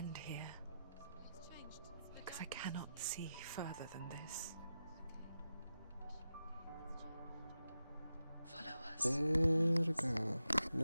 here, It's changed. because I cannot see further than this. Follow us. Verga.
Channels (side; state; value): both; inverted; correlation -0.90